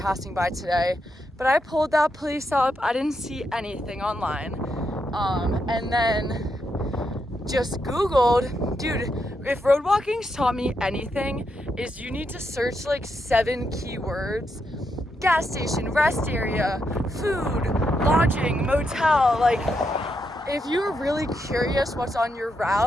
by today. But I pulled that place up. I didn't see anything online. And then just Googled, dude, if road walking's taught me anything, is you need to search like 7 keywords. Gas station, rest area, food, lodging, motel. Like, if you're really curious what's on your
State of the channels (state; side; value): normal; both; correlation 0.82